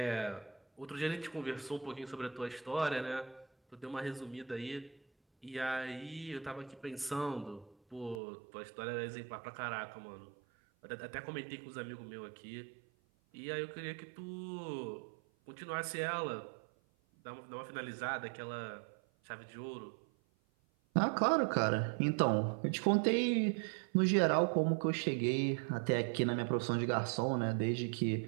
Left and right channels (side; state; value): left; drops out; at 8.2 s